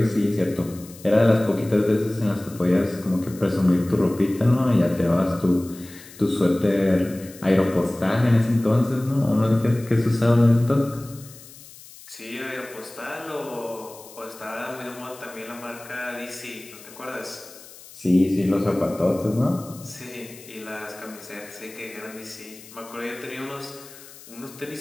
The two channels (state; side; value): noise; left; hiss, 19 dB below the sound